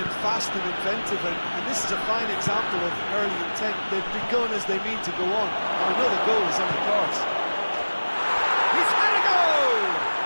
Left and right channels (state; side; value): inverted; both; correlation -1.00